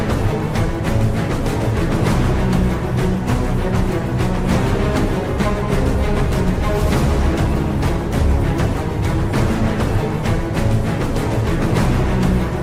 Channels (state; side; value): identical; both; correlation 1.00